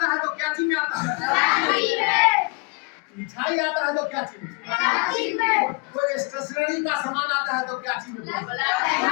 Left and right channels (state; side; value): quieter; right; 31.1 dB